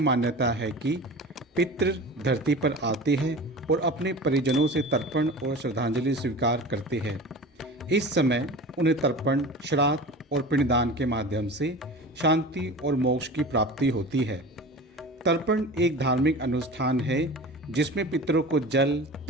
है कि पितृ धरती पर आते हैं और अपने परिजनों से तर्पण और श्रद्धांजलि स्वीकार करते हैं। इस समय उन्हें तर्पण, श्राद्ध और पिंडदान के माध्यम से शांति और मोक्ष की प्राप्ति होती है। तर्पण एक धार्मिक अनुष्ठान है जिसमें पितरों को जल,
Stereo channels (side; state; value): both; normal; correlation 0.35